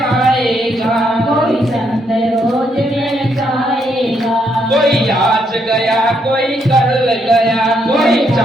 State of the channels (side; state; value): both; normal; correlation 0.75